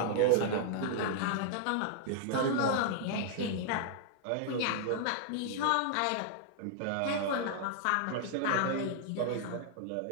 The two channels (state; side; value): different; both; correlation -0.01